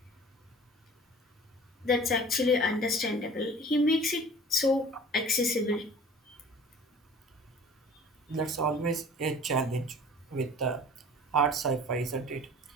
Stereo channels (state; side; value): normal; both; correlation 0.45